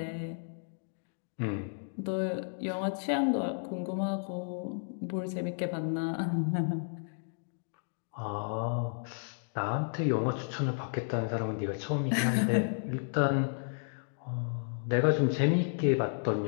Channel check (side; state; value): right; silent; digital silence